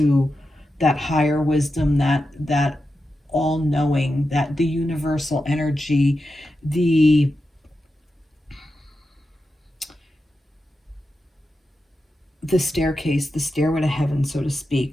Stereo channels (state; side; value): normal; both; correlation 0.89